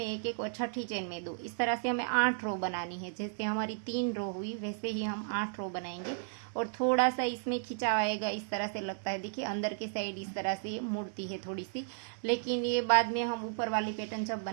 एक एक और छठी चेन में 2। इस तरह से हमें 8 रो बनानी है। जैसे हमारी 3 रो हुई वैसे ही हम 8 रो बनाएंगे। और थोड़ा सा इसमें खिंचाव आएगा, इस तरह से लगता है, देखिए अंदर के साइड इस तरह से मुड़ती है थोड़ी सी, लेकिन ये बाद में हम ऊपर वाली पैटर्न जब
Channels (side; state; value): left; silent; digital silence